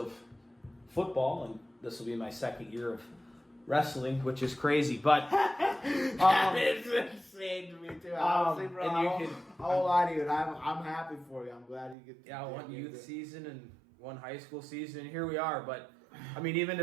football, and this will be my 2nd year of wrestling, which is crazy. But it's insane to me too. Honestly, bro, I won't lie to you. I'm happy for you. I'm glad you get. One youth season and one high school season, and here we are. But I mean, even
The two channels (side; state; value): left; drops out; at 12.0 s